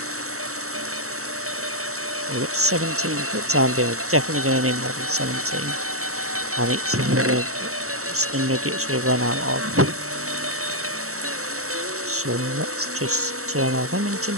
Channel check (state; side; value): late; left; 0.64 ms